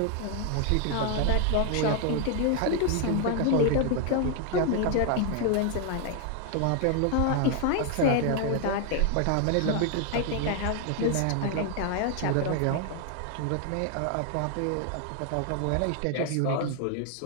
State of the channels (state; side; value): different; both; correlation 0.00